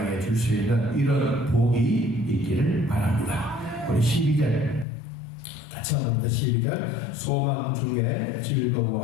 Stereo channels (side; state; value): right; drops out; at 4.9 s